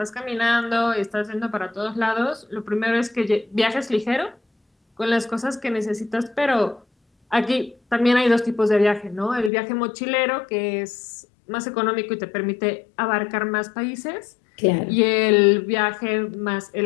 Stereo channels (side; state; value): right; drops out; at 9.5 s